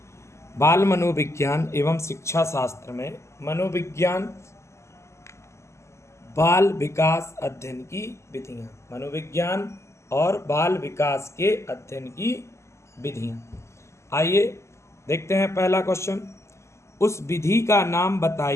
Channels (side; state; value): right; late; 0.13 ms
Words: बाल मनोविज्ञान एवं शिक्षा शास्त्र में मनोविज्ञान बाल विकास अध्ययन की विधियाँ। मनोविज्ञान और बाल विकास के अध्ययन की विधियाँ। आइए देखते हैं पहला क्वेश्चन। उस विधि का नाम